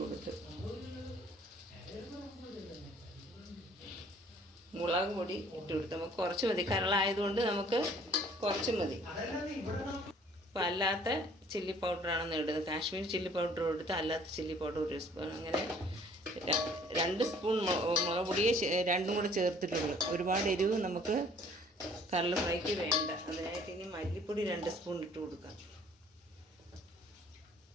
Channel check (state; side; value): normal; both; correlation 0.56